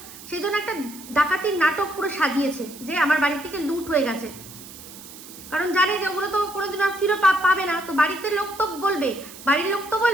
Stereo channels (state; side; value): noise; right; hiss, 16 dB below the sound